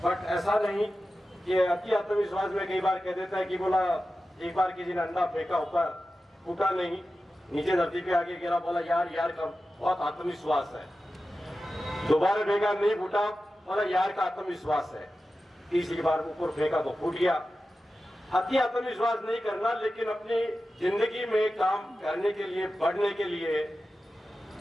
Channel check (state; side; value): normal; both; correlation 0.93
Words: बट ऐसा नहीं कि अति आत्मविश्वास में कई बार कह देता है कि बोला एक बार किसी ने अंडा फेंका, ऊपर फूटा नहीं, नीचे धरती पे आके गिरा, बोला यार यार का बहुत आत्मविश्वास है। दोबारा फेंका नहीं फूटा, बोला यार का आत्मविश्वास है। तीसरी बार ऊपर फेंका तो फूट गया। अति आत्मविश्वास नहीं करना, लेकिन अपनी जिंदगी में काम करने के लिए, बढ़ने के लिए